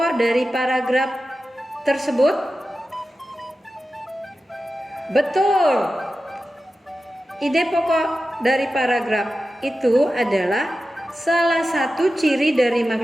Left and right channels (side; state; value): both; normal; correlation 0.93